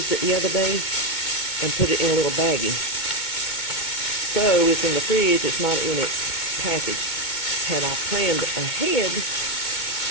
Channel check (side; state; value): right; late; 2.2 ms